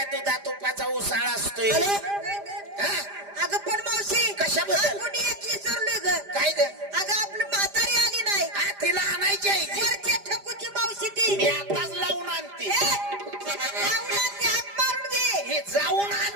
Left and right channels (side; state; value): left; late; 5.0 ms